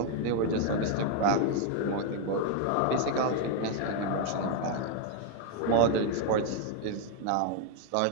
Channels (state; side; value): different; both; correlation 0.00